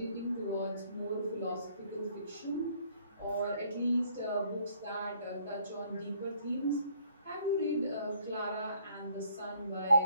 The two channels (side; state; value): both; inverted; correlation -0.64